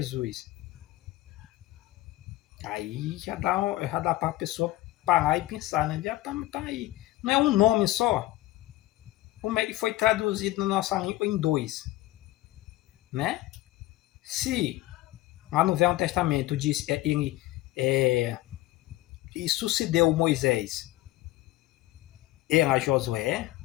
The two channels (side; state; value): right; quieter; 16.9 dB